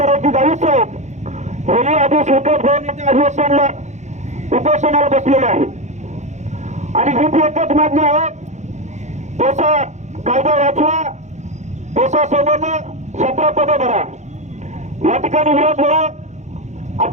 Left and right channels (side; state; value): left; late; 0.34 ms